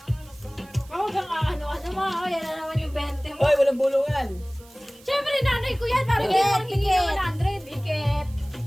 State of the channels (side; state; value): right; noise; hiss, 25 dB below the sound